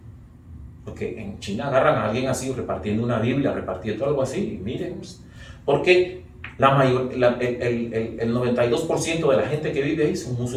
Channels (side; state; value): both; identical; correlation 1.00